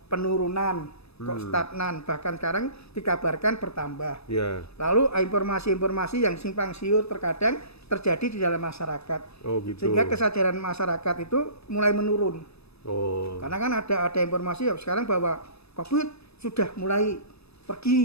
penurunan, kok stagnan, bahkan sekarang dikabarkan bertambah. Ya. Lalu informasi-informasi yang simpang siur terkadang terjadi di dalam masyarakat. Oh gitu. Sehingga kesadaran masyarakat itu mulai menurun. Oh. Karena kan ada informasi ya sekarang bahwa COVID sudah mulai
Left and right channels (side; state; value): right; late; 0.79 ms